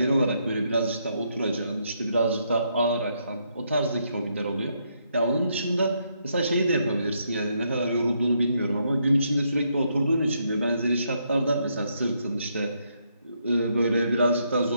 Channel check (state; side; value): inverted; both; correlation -0.76